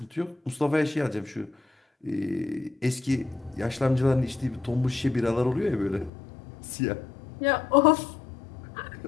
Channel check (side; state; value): right; drops out; at 6.1 s